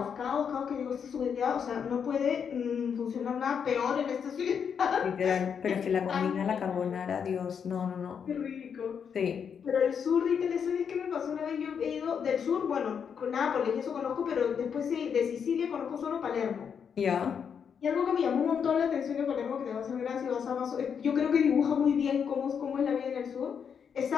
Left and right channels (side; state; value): right; quieter; 7.1 dB